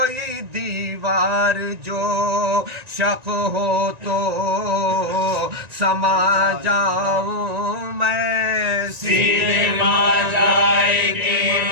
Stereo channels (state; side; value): late; left; 1.9 ms